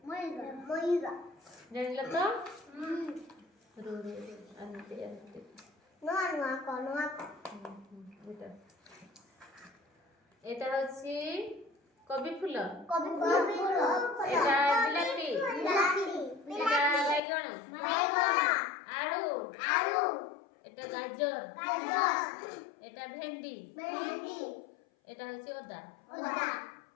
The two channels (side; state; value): right; drops out; at 17.2 s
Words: জানিল তো এটা হচ্ছে কবি ফুল এটা বিলাতি এটা বাইগণ আলু এটা গাজর এটা ভেন্ডি এটা হচ্ছে ওদা